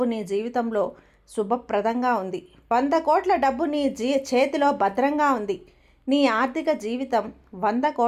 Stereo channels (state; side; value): identical; both; correlation 1.00